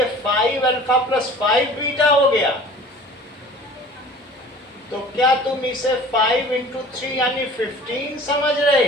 5 अल्फा प्लस 5 बीटा हो गया? तो क्या तुम इसे 5 इंटू 3 यानी 15 समझ रहे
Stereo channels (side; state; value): both; normal; correlation 0.45